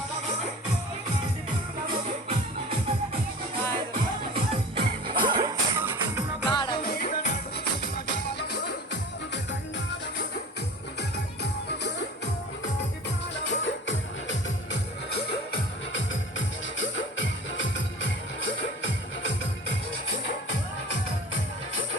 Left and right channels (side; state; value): both; normal; correlation 0.39